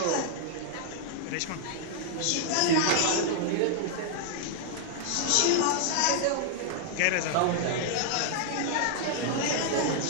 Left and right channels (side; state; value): both; different; correlation 0.00